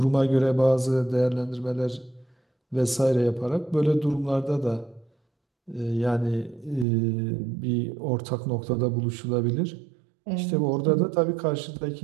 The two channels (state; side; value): drops out; left; at 6.9 s